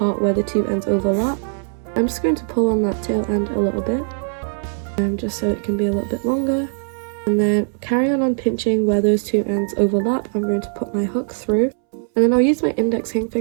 where the 2 ends overlap. I'm just going to pull on that tail end a little bit, just so it can be a little bit longer. And then carry on pinching where those two ends overlap. I'm going to put my hook through, and then I'll use my index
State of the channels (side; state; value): left; silent; 66 dB below the other